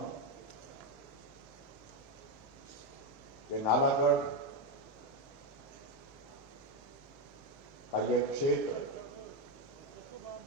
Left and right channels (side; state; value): both; normal; correlation 0.08